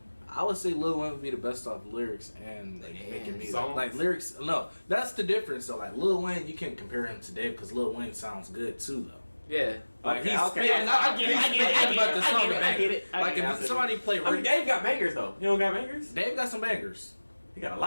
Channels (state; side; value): inverted; both; correlation -1.00